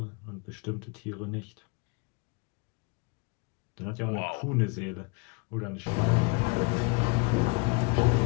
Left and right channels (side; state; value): right; quieter; 30.3 dB